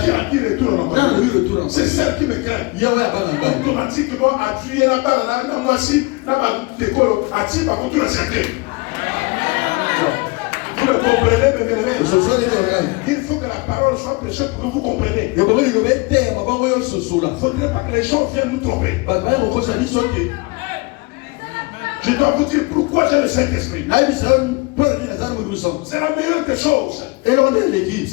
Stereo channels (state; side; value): quieter; right; 26.2 dB